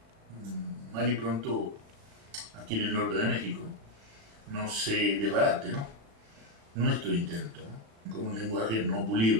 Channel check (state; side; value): late; left; 36 ms